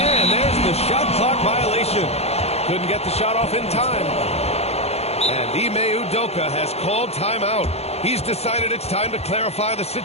there's the shot clock violation. Couldn't get the shot off in time. And Ime Udoka has called timeout. He's decided it's time to clarify the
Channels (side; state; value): right; late; 0.30 ms